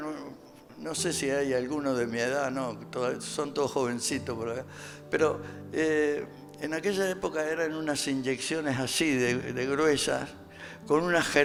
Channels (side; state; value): both; identical; correlation 1.00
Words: no sé si hay alguno de mi edad, no, son todos jovencitos por acá, pero en aquella época eran unas inyecciones así de gruesas, con unas